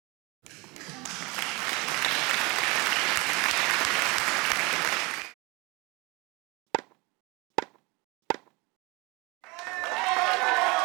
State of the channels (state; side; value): quieter; left; 26.2 dB